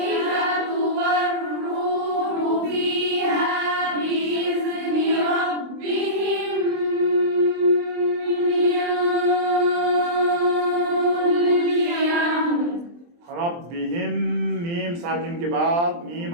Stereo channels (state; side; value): late; left; 23 ms